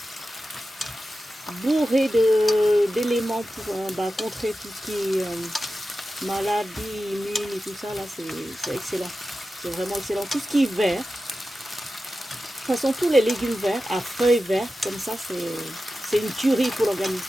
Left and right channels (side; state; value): both; normal; correlation 0.93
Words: Bourré d'éléments pour contrer tout ce qui est maladie, immune et tout ça, là c'est excellent. C'est vraiment excellent. Tout ce qui est vert, de toute façon tous les légumes verts, à feuilles vertes, comme ça c'est une tuerie pour